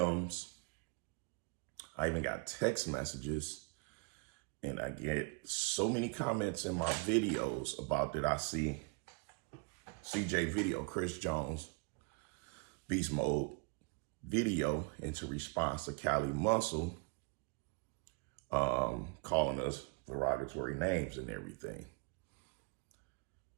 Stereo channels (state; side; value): quieter; left; 30.8 dB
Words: I even got text messages, and I get so many comments in my videos about that I see CJ video, Chris Jones, Beast Mode video into response to Cali Muscle calling us derogatory names and everything.